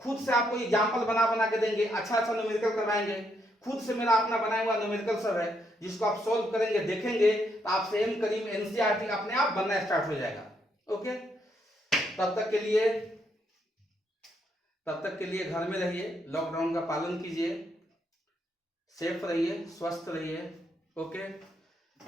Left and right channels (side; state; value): both; normal; correlation 0.76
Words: खुद से आपको एग्जांपल बना के देंगे, अच्छा न्यूमेरिकल करवाएंगे। खुद से मेरा अपना बनाया हुआ न्यूमेरिकल सब है जिसको आप सॉल्व करेंगे, देखेंगे तो आपसे एम करीम एनसीईआरटी अपने आप बनना स्टार्ट हो जाएगा। ओके, तब तक के लिए घर में रहिए, लॉकडाउन का पालन कीजिए, सेफ रहिए, स्वस्थ रहिए। ओके,